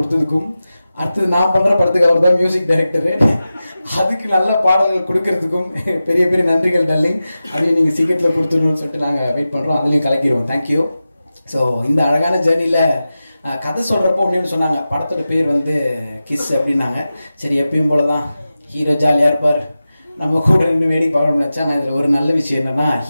அடுத்தது நான் பண்ணுற படத்துக்கு அவர் தான் மியூசிக் டைரக்டரு, அதுக்கு நல்ல பாடல்கள் கொடுக்கறதுக்கும் பெரிய பெரிய நன்றிகள் டார்லிங். அதையும் நீங்கள் சீக்கிரத்தில் கொடுத்துடணும்னு சொல்லிட்டு நாங்கள் வெயிட் பண்ணுறோம், அதுலேயும் கலக்கிடுவோம். தேங்க்யூ. ஸோ இந்த அழகான ஜேர்னியில் கதை சொல்கிறப்போ ஒன்று சொன்னாங்க, படத்தோட பேர் வந்து கிஸ் அப்படின்னாங்க. சரி எப்பயும் போல தான் ஹீரோ ஜாலியாக இருப்பார், நம்ம கூட ரெண்டு வேடிக்கை பார்க்கணும்னு நினச்சா. நான் இதில் ஒரு நல்ல விஷயம் என்னன்னா,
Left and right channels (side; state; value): both; inverted; correlation -0.94